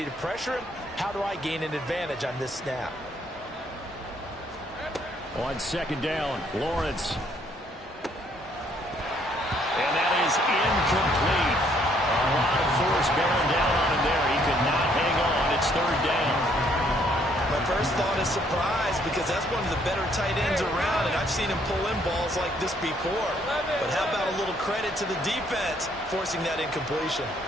to pressure him? How do I gain an advantage on this snap? On second down, Lawrence. And that is incomplete. A lot of force bearing down on him there. He could not hang on. It's third down. My first thought is surprise, because that's one of the better tight ends around, and I've seen him pull in balls like this before. But how about a little credit to the defense forcing that incompletion?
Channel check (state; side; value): normal; both; correlation 0.67